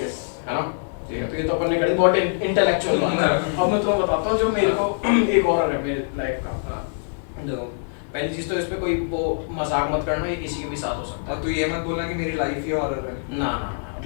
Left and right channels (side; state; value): right; silent; digital silence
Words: है ना। ठीक है, तो ये तो अपन ने कर दी, बहुत इंटेलेक्चुअल बात है। अब मैं तुम्हें बताता हूँ जो मेरे को एक और है मेरे लाइफ का। देखो पहली चीज तो इस पे कोई वो मजाक मत करना, ये किसी के भी साथ हो सकता है। और तू ये मत बोला कि मेरी लाइफ ही हॉरर है। ना ना ना,